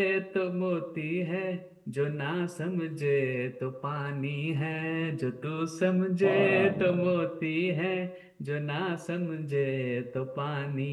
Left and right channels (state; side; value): identical; both; correlation 1.00